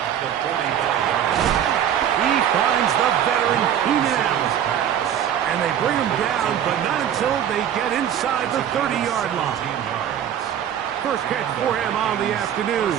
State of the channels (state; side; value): quieter; left; 9.8 dB